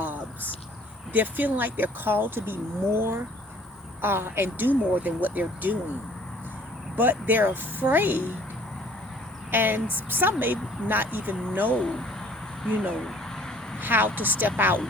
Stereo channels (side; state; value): both; normal; correlation 0.55